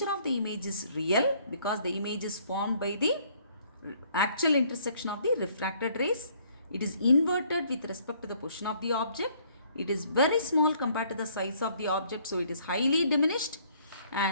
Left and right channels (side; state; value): both; inverted; correlation -0.62